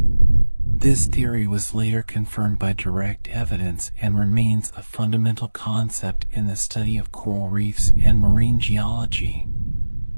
This theory was later confirmed by direct evidence and remains a fundamental concept in the study of coral reefs and marine geology.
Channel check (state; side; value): inverted; both; correlation -1.00